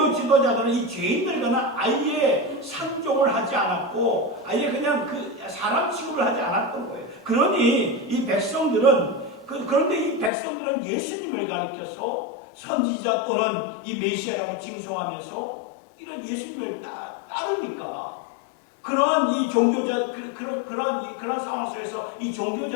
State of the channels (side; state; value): right; drops out; at 10.3 s